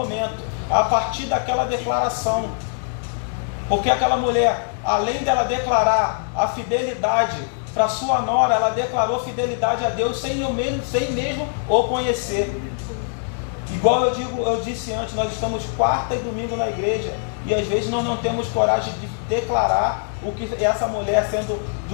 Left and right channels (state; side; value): silent; right; digital silence